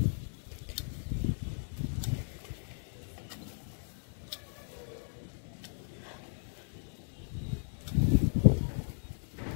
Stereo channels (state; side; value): silent; right; digital silence